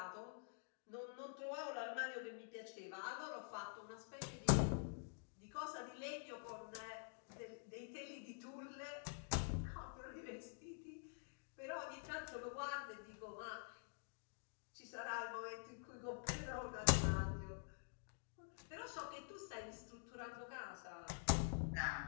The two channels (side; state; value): right; silent; digital silence